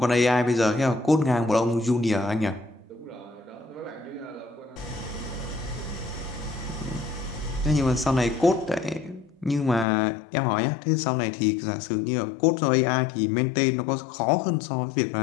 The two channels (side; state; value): right; drops out; at 9.9 s